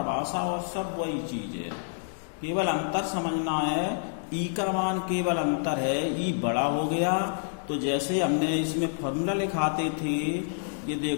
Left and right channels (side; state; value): right; silent; digital silence